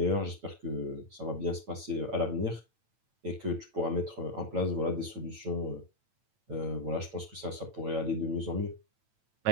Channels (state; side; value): late; left; 9.0 ms